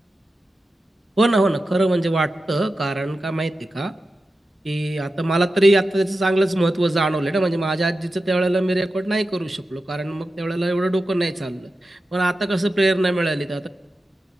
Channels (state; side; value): normal; both; correlation 0.92